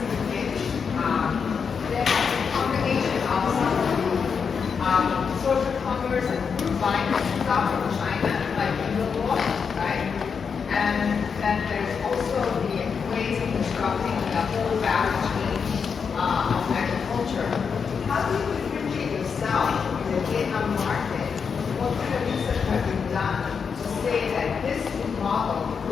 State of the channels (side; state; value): right; quieter; 6.1 dB